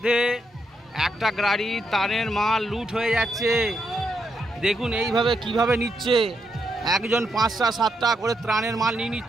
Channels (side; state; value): both; normal; correlation 0.80